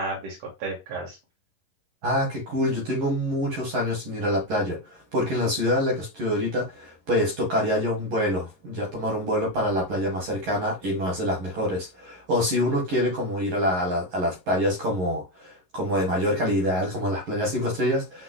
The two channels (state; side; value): late; left; 11 ms